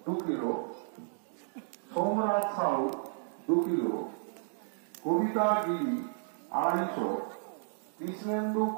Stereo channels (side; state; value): left; silent; digital silence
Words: 2 কিলো, সোমরাজ সাউ 2 কিলো, কবিতা গিরি 250, কৃষ্ণেন্দু